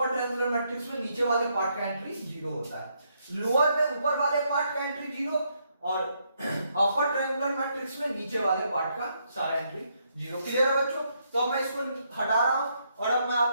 ट्रायंगुलर मैट्रिक्स में नीचे वाले पार्ट का एंट्री 0 होता है। लोअर में ऊपर वाले पार्ट का एंट्री 0 और अपर ट्रायंगुलर मैट्रिक्स में नीचे वाले पार्ट का सारा एंट्री 0। क्लियर है बच्चों, तो अब मैं इसको हटा रहा हूं और अब मैं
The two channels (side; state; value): both; inverted; correlation -0.75